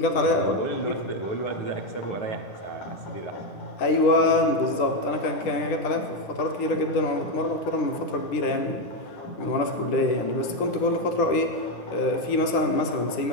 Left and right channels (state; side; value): late; right; 10 ms